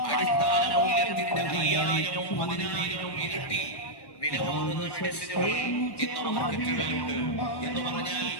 അടിസ്ഥാന മൂല്യത്തിന്റെ 5000-ഉം 10000-ഉം ഇരട്ടി വില വാങ്ങുന്ന മെഡിസിനുകൾ ഇന്ന് മാർക്കറ്റുകളിലുണ്ട്. എന്ന് പറഞ്ഞാൽ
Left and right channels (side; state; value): right; late; 1.1 ms